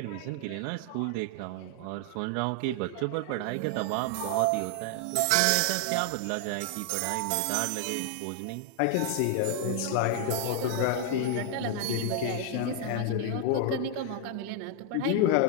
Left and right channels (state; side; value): different; both; correlation 0.00